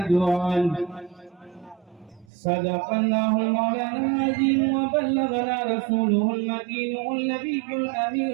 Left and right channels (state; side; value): drops out; left; at 2.2 s